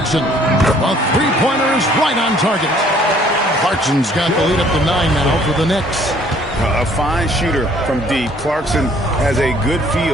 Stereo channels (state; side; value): normal; both; correlation 0.59